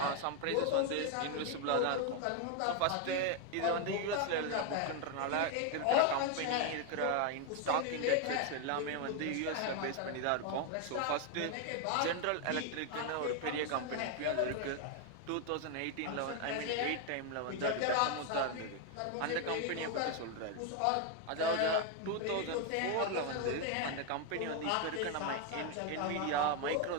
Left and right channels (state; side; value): different; both; correlation 0.01